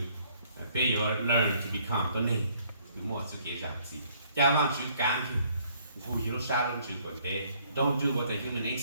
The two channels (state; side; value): inverted; both; correlation -0.63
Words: to learn to become the name. Don't do what the human